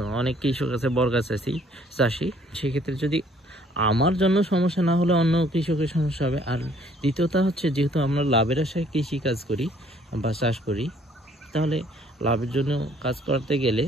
অনেক কৃষক আছে বর্গা চাষি, সেক্ষেত্রে যদি আমার জন্য সমস্যা না হলে অন্য কৃষকের সমস্যা হবে। আর দ্বিতীয়টা হচ্ছে, যেহেতু আমরা লাভের আশায় কৃষি কাজ করি বা চাষ করি, তাহলে লাভের জন্য কাজ করতে গেলে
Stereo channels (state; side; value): normal; both; correlation 0.61